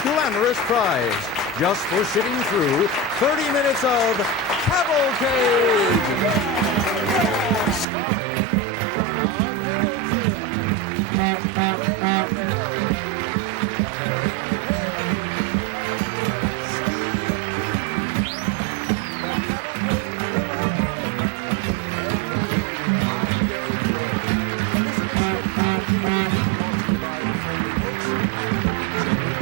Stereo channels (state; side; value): drops out; left; at 7.9 s